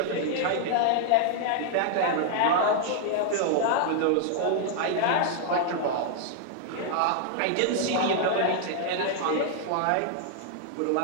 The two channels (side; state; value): both; different; correlation -0.01